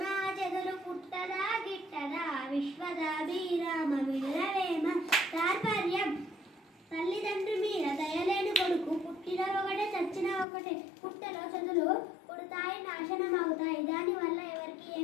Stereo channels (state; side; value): drops out; right; at 10.5 s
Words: జగలు పుట్టదా గిట్టదా విశ్వదాభిరామ వినురవేమ. తాత్పర్యం: తల్లిదండ్రి మీద దయలేని కొడుకు పుట్టిన ఒకటే చచ్చిన ఒకటే. పుట్టలో చెదులు పుడతాయి, నాశనం అవుతాయి, దానివల్ల ఎవరికి